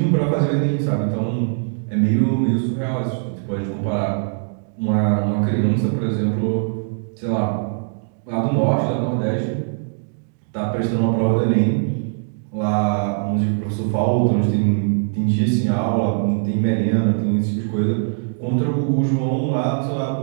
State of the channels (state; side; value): silent; left; digital silence